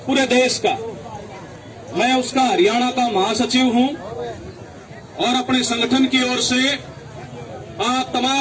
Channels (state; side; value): identical; both; correlation 1.00